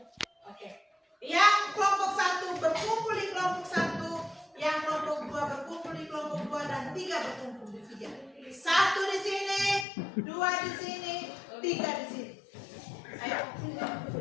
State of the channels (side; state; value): right; drops out; at 9.9 s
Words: Oke. Yang kelompok 1 berkumpul di kelompok 1, yang kelompok 2 berkumpul di kelompok 2 dan 3 berkumpul di 3. 1 di sini, 2 di sini, 3 di sini. Ayo.